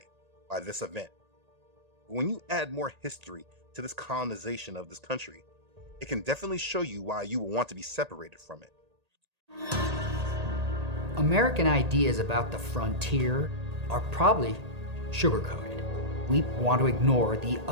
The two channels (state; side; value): late; left; 1.8 ms